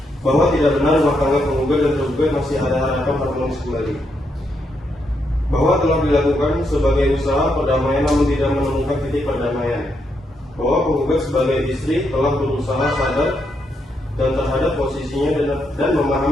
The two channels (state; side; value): normal; both; correlation 0.79